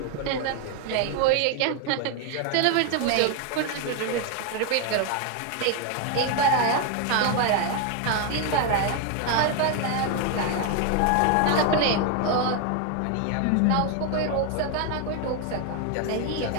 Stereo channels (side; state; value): both; different; correlation 0.01